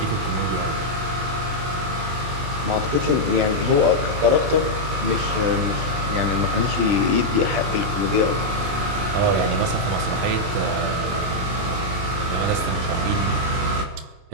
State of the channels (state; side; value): late; left; 22 ms